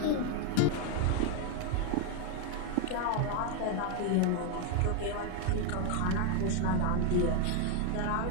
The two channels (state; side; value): different; both; correlation 0.01